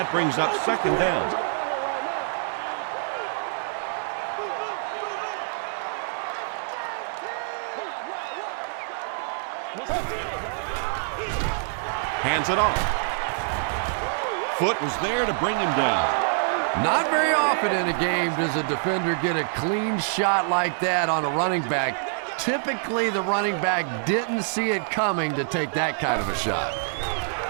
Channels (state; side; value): silent; left; digital silence